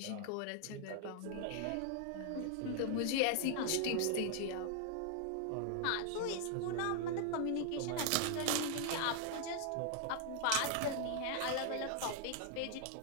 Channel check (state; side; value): different; both; correlation 0.00